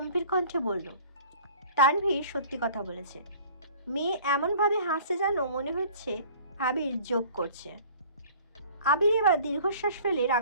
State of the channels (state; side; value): inverted; both; correlation -0.48